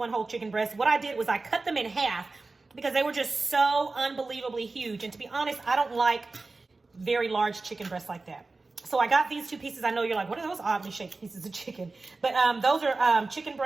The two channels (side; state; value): left; quieter; 3.6 dB